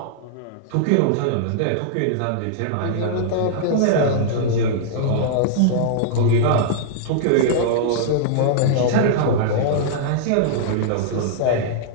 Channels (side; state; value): both; different; correlation -0.01